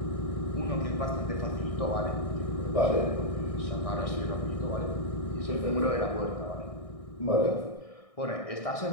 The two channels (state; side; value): late; right; 1.6 ms